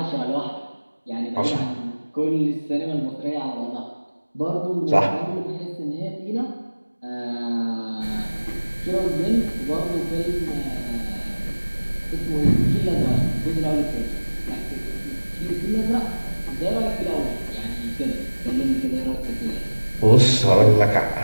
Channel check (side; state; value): both; inverted; correlation -1.00